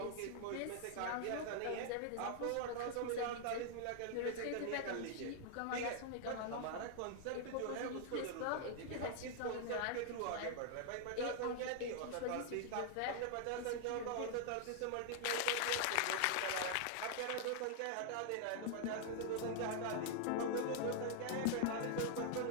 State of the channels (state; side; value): different; both; correlation 0.00